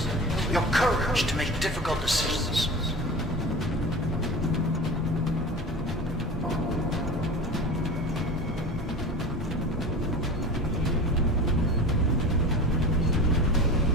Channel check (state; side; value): normal; both; correlation 0.33